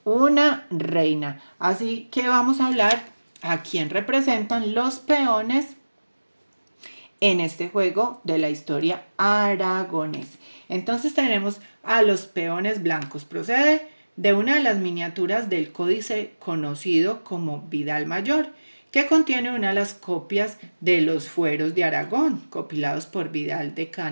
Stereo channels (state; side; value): inverted; both; correlation -1.00